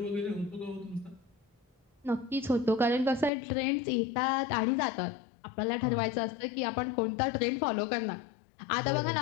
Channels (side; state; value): right; drops out; at 3.3 s